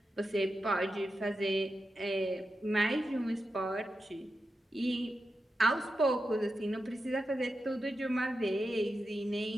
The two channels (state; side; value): normal; both; correlation 0.89